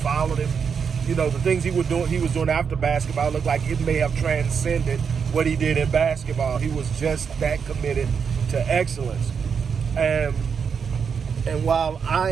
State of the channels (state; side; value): quieter; left; 6.4 dB